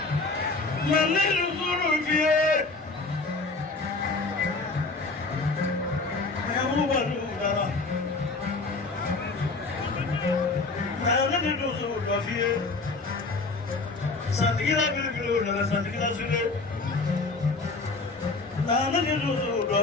Santikila sule, nana kilusu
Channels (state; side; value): quieter; right; 3.6 dB